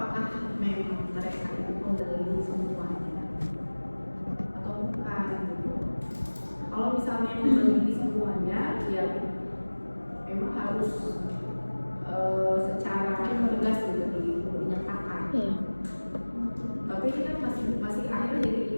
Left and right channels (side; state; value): both; inverted; correlation -1.00